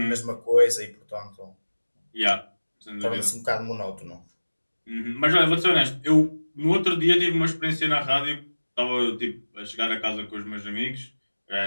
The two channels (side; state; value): both; inverted; correlation -1.00